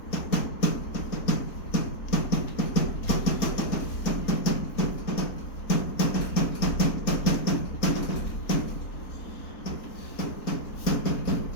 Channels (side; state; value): right; late; 4.3 ms